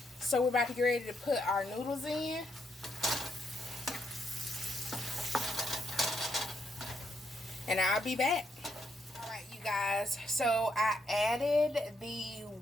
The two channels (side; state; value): both; normal; correlation 0.78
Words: So we're about to get ready to put our noodles in. And I'll be back. Alright, you guys. So I added the